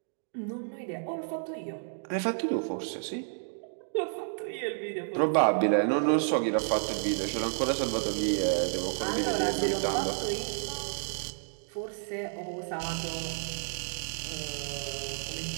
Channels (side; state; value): left; silent; digital silence